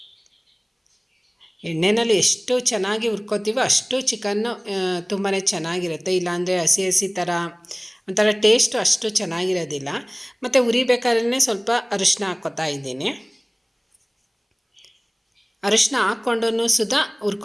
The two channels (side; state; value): both; identical; correlation 1.00